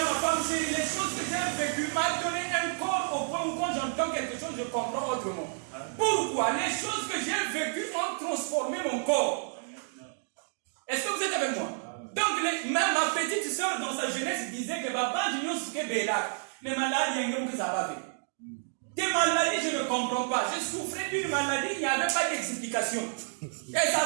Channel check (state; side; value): silent; left; 58 dB below the other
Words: ma femme, chérie, les choses que j'ai vécues m'ont donné un corps au point où quand j'entends quelque chose, je comprends autrement. Pourquoi? Les choses que j'ai vécues ont transformé mon corps. Est-ce que vous êtes avec moi? Donc, même ma petite soeur, dans sa jeunesse, disait que papa, je ne sais pas, mais malade, il y a un que ça va faire. Des maladies, je ne comprends pas. Je souffrais d'une maladie, il n'y avait pas d'explication. Et